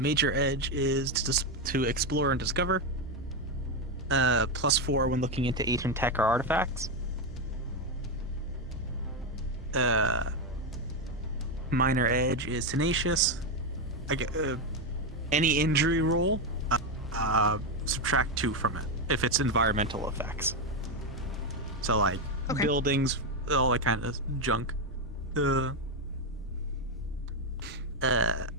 edge is to explore and discover. +4 when looking into ancient tech or artifacts. Minor edge is tenacious. I get any injury roll, subtract 2 from it if it's environmental effects. So like buildings, all that kind of junk.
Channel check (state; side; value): normal; both; correlation 0.07